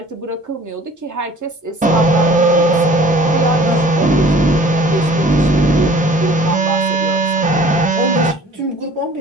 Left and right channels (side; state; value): both; normal; correlation 0.49